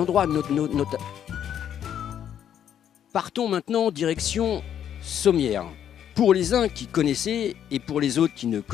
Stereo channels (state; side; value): quieter; right; 9.6 dB